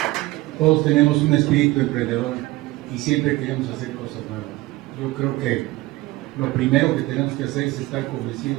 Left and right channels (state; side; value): quieter; left; 19.5 dB